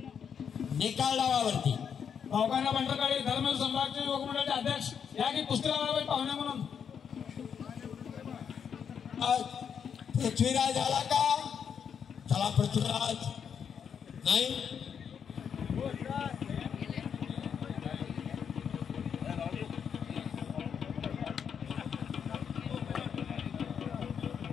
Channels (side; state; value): right; quieter; 7.4 dB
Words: निकाल डावावरती. गावकाना बंडरकडे धर्मेंद्र सम्राटचे युवक मंडळाचे अध्यक्ष या की कुस्ती लावायला पाहिजे पाहुणे म्हणून. पृथ्वीराज आला का. चला पृथ्वीराज नाही